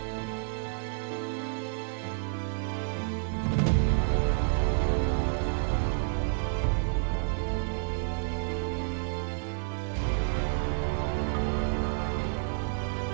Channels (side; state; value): left; silent; digital silence